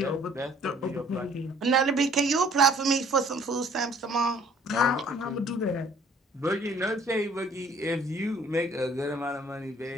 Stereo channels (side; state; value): both; normal; correlation 0.56